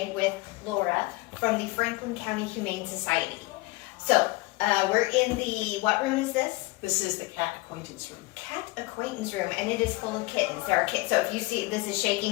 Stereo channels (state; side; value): quieter; right; 22.1 dB